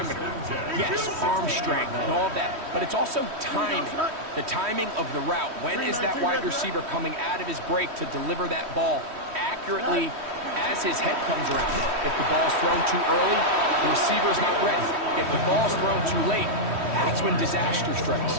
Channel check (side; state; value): left; late; 3.1 ms